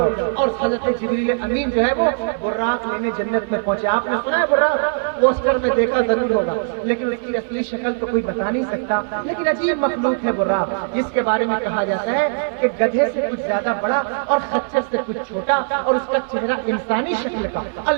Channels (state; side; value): silent; left; digital silence